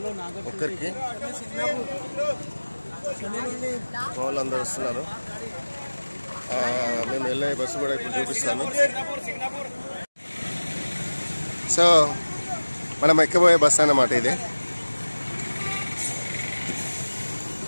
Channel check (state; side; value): inverted; both; correlation -1.00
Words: ఒక్కరికి. వాళ్ళందరూ వస్తున్నారు. మేము వెళ్ళే బస్సు కూడా ఇప్పుడు చూపిస్తాను. సో మనం ఎక్కబోయే బస్సు అన్నమాట ఇది.